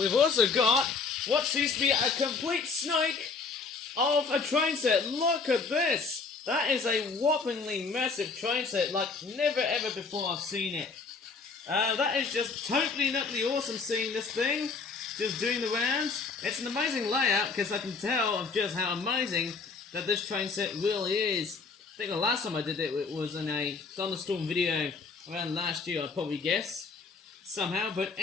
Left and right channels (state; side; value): quieter; right; 4.6 dB